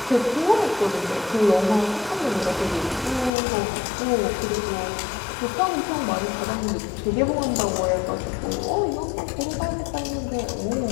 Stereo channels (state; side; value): drops out; right; at 3.3 s